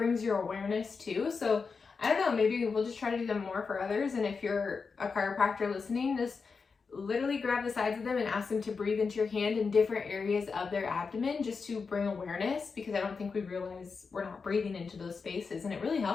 your awareness too. So I don't know, maybe we'll just try to do them more for others. And if you're a chiropractor listening, just literally grab the sides of them and ask them to breathe into your hand in different areas of their abdomen just to bring awareness, because I don't think we realize we're not breathing into those spaces, and it really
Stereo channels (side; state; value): right; quieter; 5.0 dB